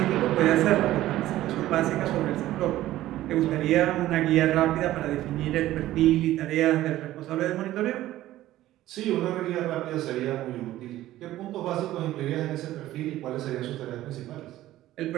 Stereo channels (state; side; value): quieter; left; 14.8 dB